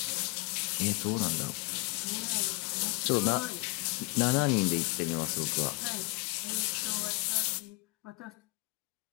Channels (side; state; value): right; quieter; 25.1 dB